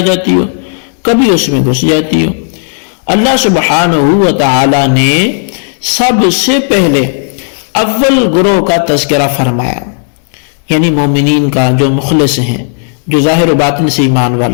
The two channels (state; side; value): silent; right; 74 dB below the other